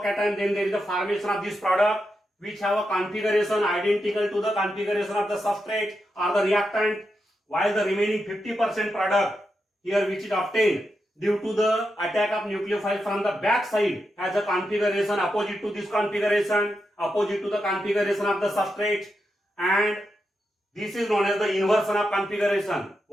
then there is a formation of this product which have a configuration identical to the configuration of the substrate or the reactant, while the remaining 50% product here which is obtained due to the attack of nucleophile from the back side has a configuration opposite to this configuration, opposite to the configuration of the substrate, and this is known as the inversion of configuration,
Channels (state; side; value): normal; both; correlation 0.86